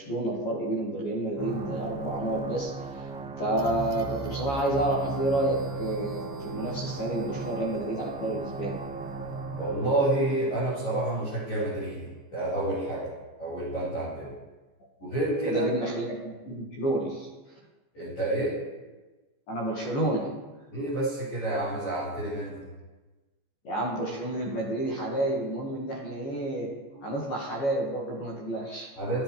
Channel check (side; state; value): right; late; 14 ms